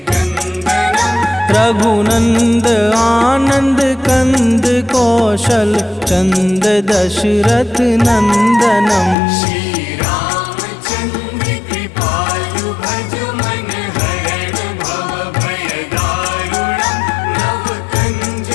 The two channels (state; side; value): drops out; right; at 9.2 s